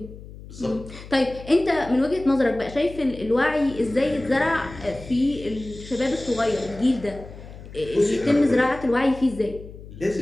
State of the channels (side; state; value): left; noise; hum, 16 dB below the sound